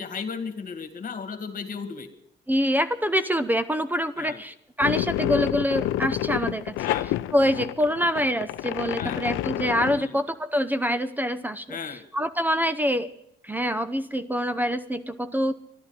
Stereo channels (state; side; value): normal; both; correlation 0.66